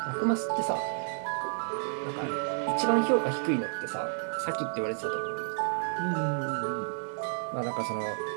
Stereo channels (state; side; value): silent; left; digital silence